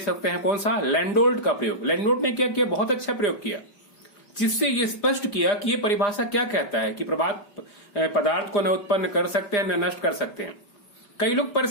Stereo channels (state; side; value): late; right; 5.1 ms